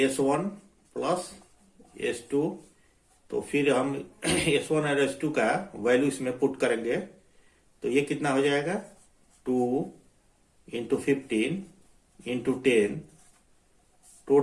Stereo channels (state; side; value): identical; both; correlation 1.00